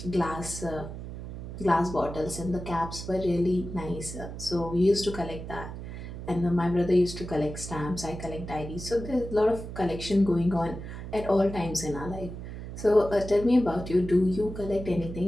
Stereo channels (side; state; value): right; noise; hum, 9 dB below the sound